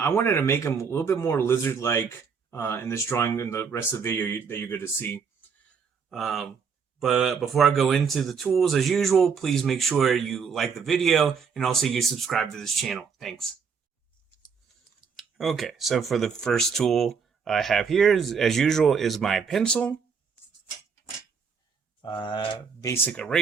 wanted to make him a little bit more lizard-like in this drawing and the rest of the video that you're going to see. But before I go into the tools, as usual, please make sure you like the video and also you subscribe to this channel. Thanks. Okay, so for the first tool I have here, as usual, is my pencil, basic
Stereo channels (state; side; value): quieter; left; 6.0 dB